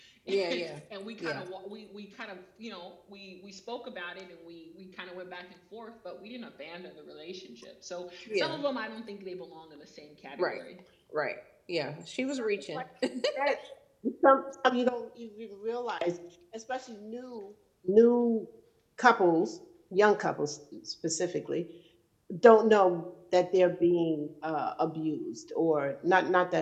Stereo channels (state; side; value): identical; both; correlation 1.00